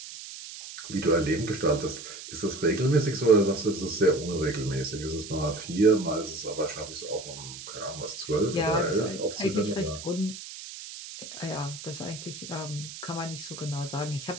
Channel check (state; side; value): noise; right; hiss, 12 dB below the sound